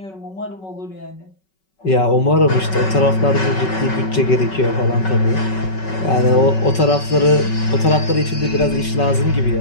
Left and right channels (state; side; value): late; right; 5.3 ms